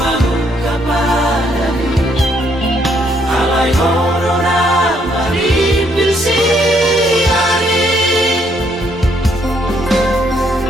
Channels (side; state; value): both; normal; correlation 0.70